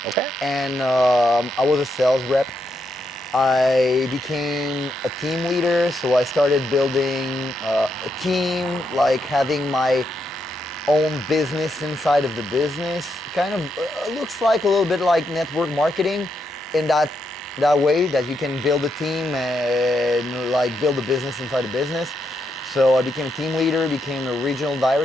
Okay. And I was a sales rep. I became a team leader, so I started building a team, like having my own business inside of the business. Kind of looks like a little bit like network marketing in that way, that you can build a team and like build a business inside a business. So I became a team leader, became a regional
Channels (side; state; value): both; normal; correlation 0.81